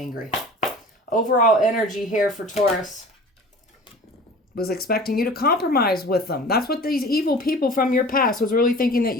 Overall energy here for Taurus. Was expecting you to compromise with them. That's what these evil people from your past was really thinking, that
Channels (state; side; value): normal; both; correlation 0.41